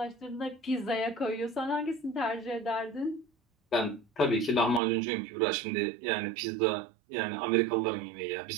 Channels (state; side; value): drops out; left; at 4.8 s